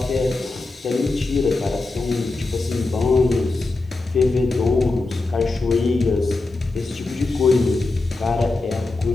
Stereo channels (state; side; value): quieter; right; 3.3 dB